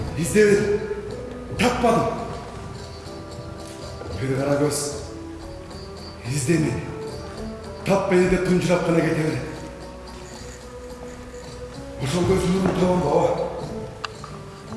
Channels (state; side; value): identical; both; correlation 1.00